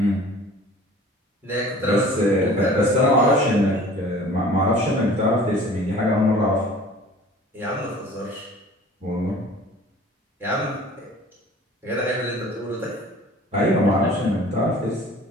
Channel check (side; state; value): both; normal; correlation 0.47